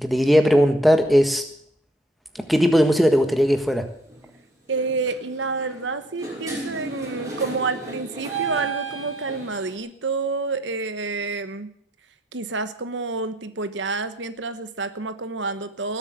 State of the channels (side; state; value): both; normal; correlation 0.65